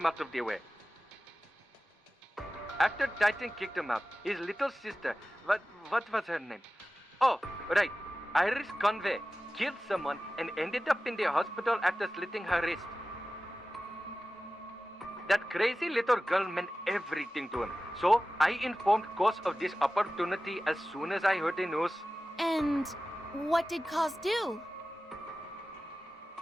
out of the way. After Titan kicked him out, his little sister, what was her name? Oh, right, Iris Conway, killed someone and ended up in the hospital after slitting her wrist. That crazy little girl meant everything to him, so I informed Koss of this opportunity as soon as I heard the news. And what did Koss do?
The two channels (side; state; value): both; normal; correlation 0.96